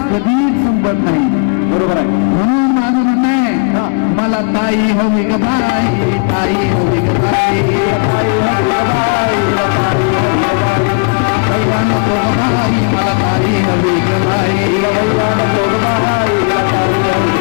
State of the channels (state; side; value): quieter; right; 36.8 dB